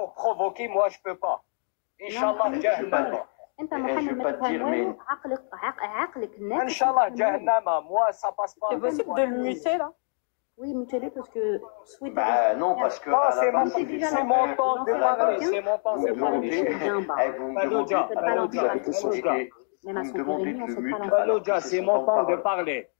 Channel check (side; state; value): right; silent; 55 dB below the other